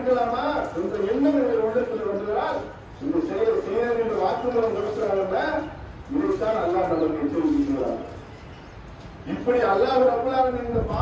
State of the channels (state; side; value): identical; both; correlation 1.00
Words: என்ற எண்ணம் எங்கள் உள்ளத்தில் வந்ததால் இந்த செயல் செய்ய என்று வாக்குமூலம் கொடுக்கிறார்கள். இதைத்தான் என்றுதான் அல்லாஹ் நமக்கு எச்சரிக்கிறார். இப்படி அல்லாஹ் ரப்பல் ஆலமீன் இந்த